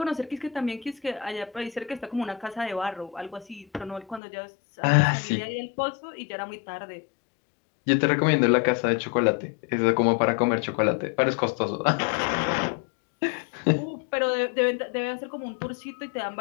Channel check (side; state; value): right; drops out; at 4.2 s